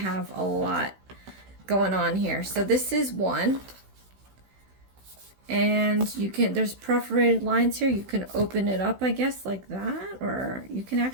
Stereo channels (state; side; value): late; left; 16 ms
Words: a lot going on here. So this is one. And you can, there's perforated lines here. You can open it up, I guess, like that, or you can